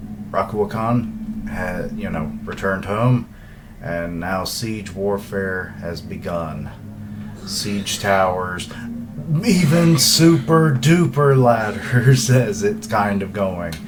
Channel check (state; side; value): identical; both; correlation 1.00